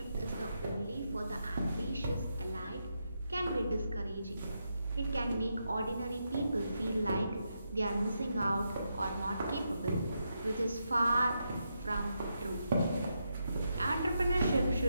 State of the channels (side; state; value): both; inverted; correlation -0.83